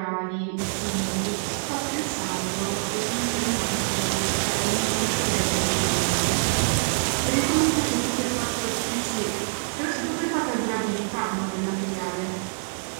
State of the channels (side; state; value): left; silent; 60 dB below the other